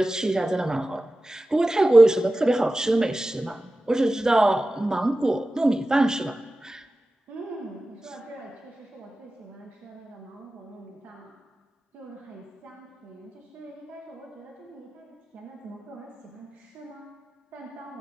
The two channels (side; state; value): both; normal; correlation 0.95